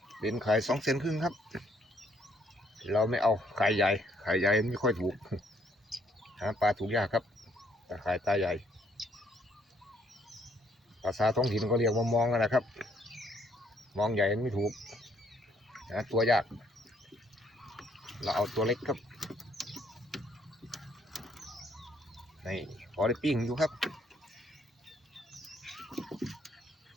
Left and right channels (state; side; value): normal; both; correlation 0.68